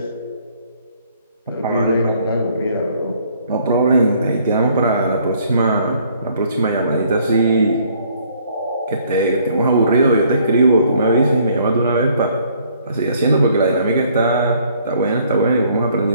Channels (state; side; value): inverted; both; correlation -0.62